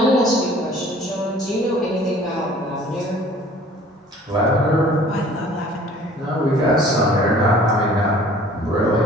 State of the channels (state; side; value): normal; both; correlation 0.51